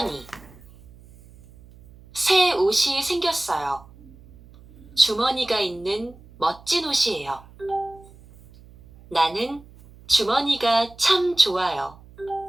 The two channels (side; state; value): right; noise; hum, 23 dB below the sound